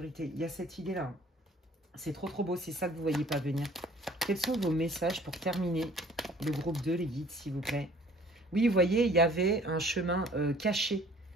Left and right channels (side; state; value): both; normal; correlation 0.53